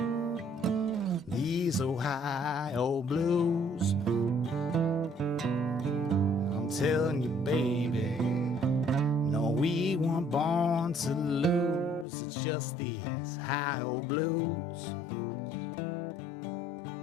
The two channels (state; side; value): drops out; right; at 12.1 s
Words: These Ohio blues. Telling you, baby, no, we weren't born to lose. It's just these high old blues.